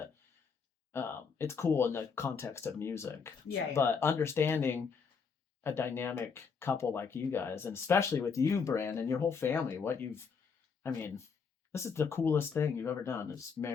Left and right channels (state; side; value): quieter; right; 5.7 dB